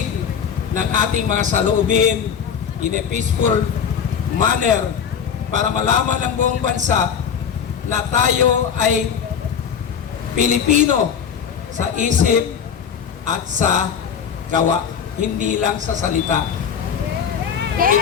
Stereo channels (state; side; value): quieter; right; 7.5 dB